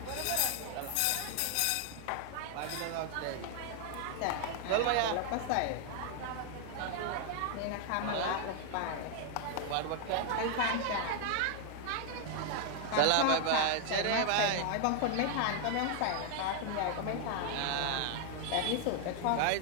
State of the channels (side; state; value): both; different; correlation 0.00